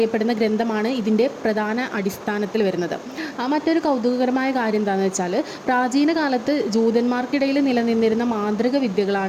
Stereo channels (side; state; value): both; identical; correlation 1.00